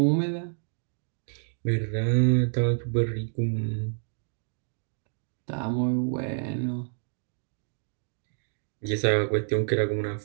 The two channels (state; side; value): silent; left; digital silence